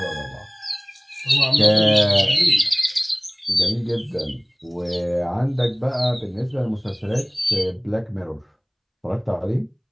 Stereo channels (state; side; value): identical; both; correlation 1.00